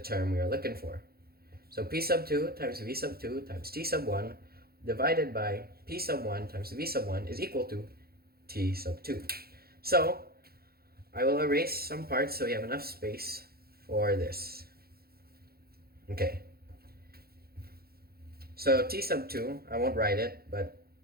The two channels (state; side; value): late; left; 0.44 ms